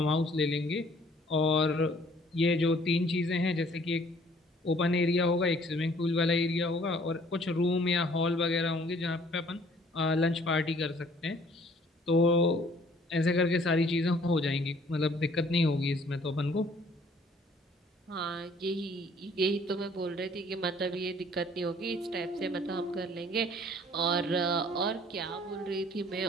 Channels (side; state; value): both; normal; correlation 0.57